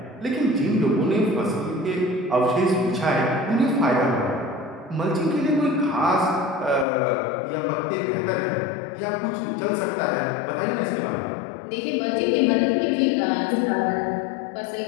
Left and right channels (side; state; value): right; drops out; at 6.9 s